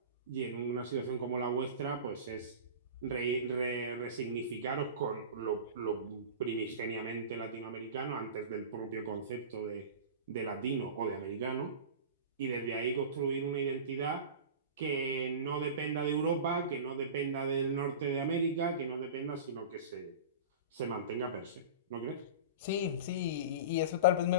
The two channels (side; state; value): both; inverted; correlation -0.31